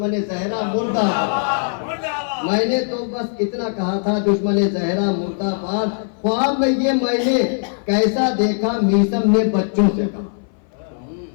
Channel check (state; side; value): silent; right; 58 dB below the other